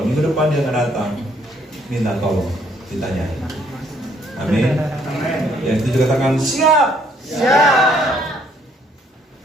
minggu depan dia nggak datang, minta tolong, ditanyain. Amin. Yang setuju katakan siap. Siap.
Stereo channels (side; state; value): both; normal; correlation 0.66